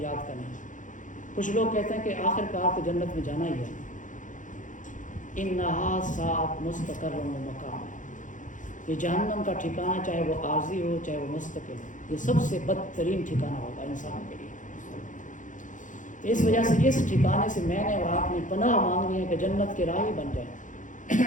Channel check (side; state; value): right; late; 0.37 ms